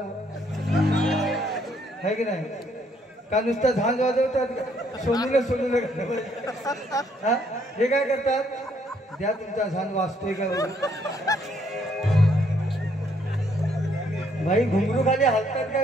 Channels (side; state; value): both; normal; correlation 0.69